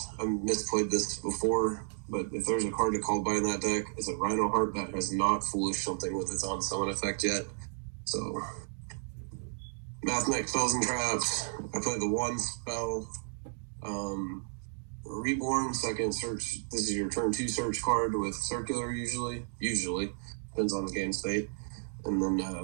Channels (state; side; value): silent; left; digital silence